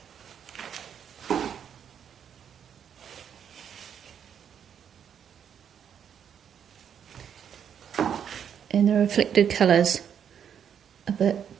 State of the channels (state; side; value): quieter; left; 8.3 dB